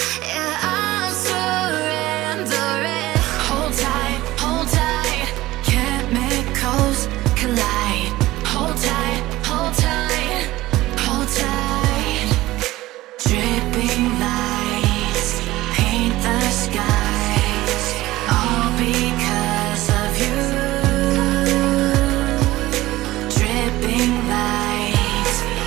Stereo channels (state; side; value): quieter; left; 17.3 dB